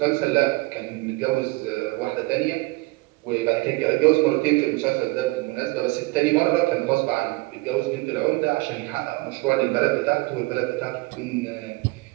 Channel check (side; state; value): left; quieter; 23.8 dB